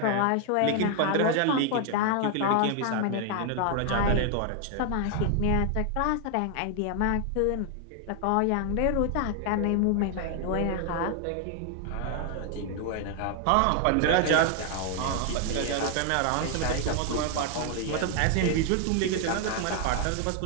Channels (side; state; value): both; different; correlation 0.00